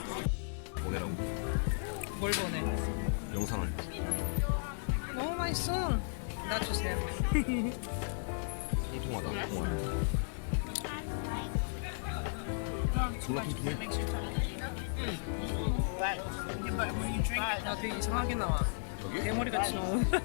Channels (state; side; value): silent; right; 54 dB below the other